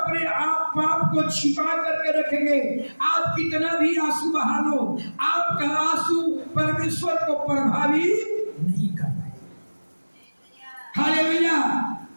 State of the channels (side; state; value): both; inverted; correlation -1.00